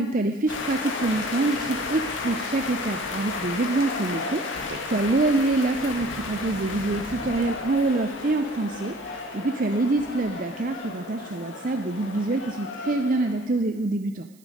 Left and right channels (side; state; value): right; noise; hiss, 30 dB below the sound